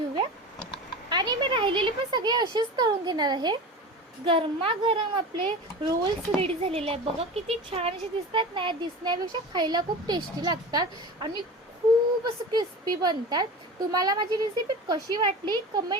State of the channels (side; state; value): both; normal; correlation 0.31